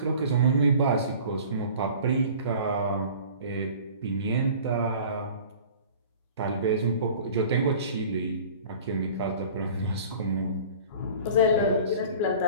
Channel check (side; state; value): both; inverted; correlation -0.44